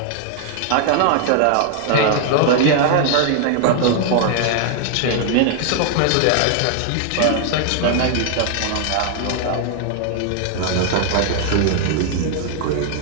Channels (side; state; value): both; different; correlation 0.00